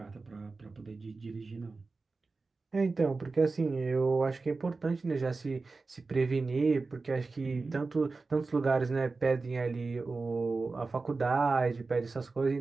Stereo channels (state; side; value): quieter; left; 3.9 dB